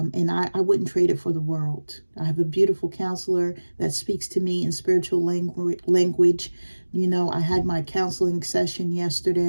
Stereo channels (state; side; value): inverted; both; correlation -1.00